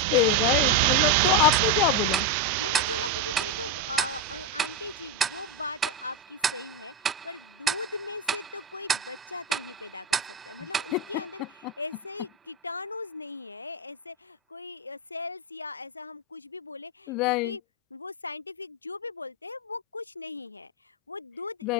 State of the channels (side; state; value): both; normal; correlation 0.08